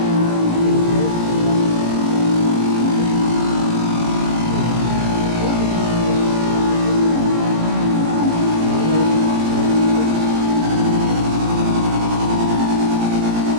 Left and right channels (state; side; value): late; left; 18 ms